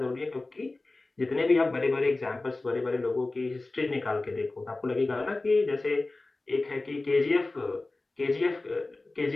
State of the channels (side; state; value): right; quieter; 3.1 dB